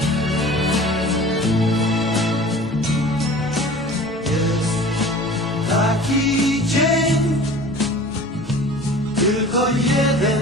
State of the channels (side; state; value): both; normal; correlation 0.42